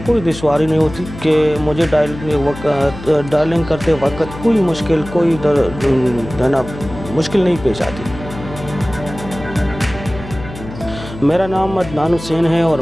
कोई दुश्वारी नहीं होती कि मुझे डायलिंग करते वक़्त कोई मुश्किल, कोई है ना, मुश्किल नहीं पेश आती। मेरा नाम अदनान हुसैन है और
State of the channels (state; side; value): noise; left; hum, 13 dB below the sound